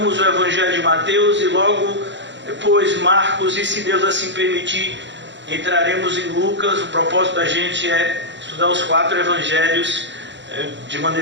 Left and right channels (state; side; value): late; left; 0.53 ms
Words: o evangelho de Mateus e logo depois Marcos, e se Deus assim permitir, entraremos em Lucas. O propósito da gente é estudar os 4 evangelhos de